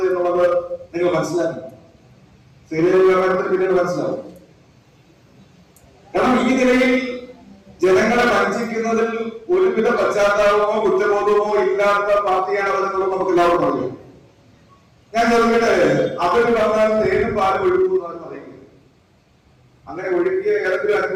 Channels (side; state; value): both; identical; correlation 1.00